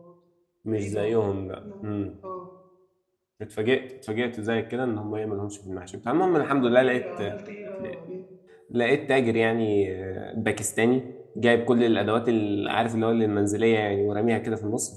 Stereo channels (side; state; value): both; identical; correlation 1.00